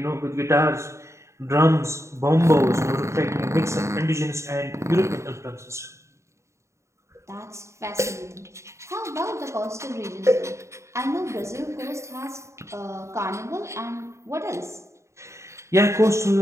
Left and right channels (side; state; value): left; late; 0.14 ms